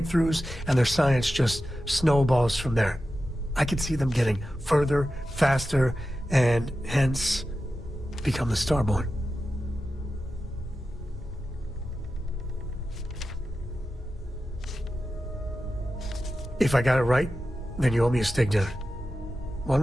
and their science just snowballs from there. I could see them getting further, faster, and hence become the Starborn. If I got it right, then you owe me a steak dinner.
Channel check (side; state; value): both; normal; correlation 0.92